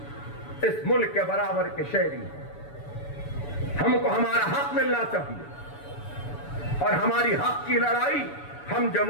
इस मुल्क के बराबर के शहरी हैं। हमको हमारा हक मिलना चाहिए और हमारी हक की लड़ाई हम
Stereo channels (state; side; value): late; right; 6.9 ms